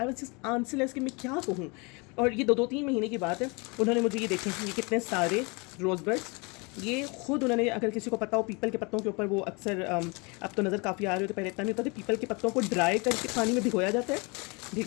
was just answerless कि मैं क्या कहूँ। और ये 2-3 महीने की बात है, उन्होंने मुझे ये देखें, ये कितने सारे रोज़ बड्स, ये खुद उन्होंने, अगर किसी को पता हो पीपल के पत्तों के ऊपर वो अक्सर अब तो नज़र काफ़ी आ रही होती है, पहले इतना नहीं होता था, पीपल के पत्तों को ड्राई करके पानी में भिगोया जाता है,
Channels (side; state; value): right; quieter; 29.4 dB